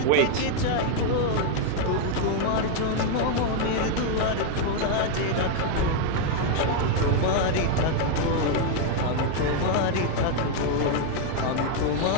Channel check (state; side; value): different; both; correlation 0.00